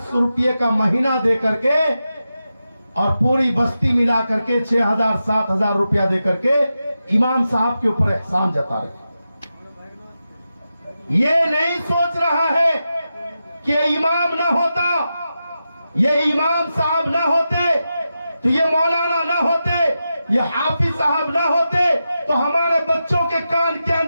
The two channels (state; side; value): inverted; both; correlation -0.90